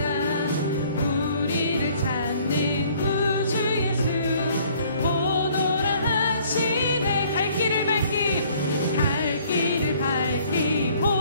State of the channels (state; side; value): inverted; both; correlation -0.58